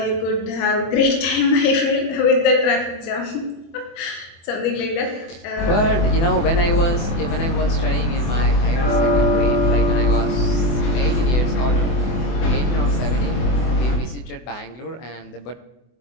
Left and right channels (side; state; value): right; late; 24 ms